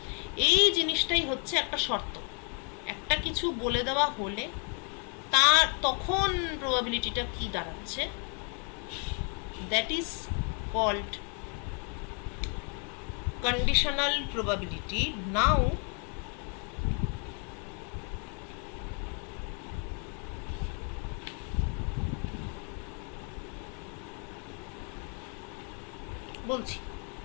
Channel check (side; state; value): right; quieter; 37.4 dB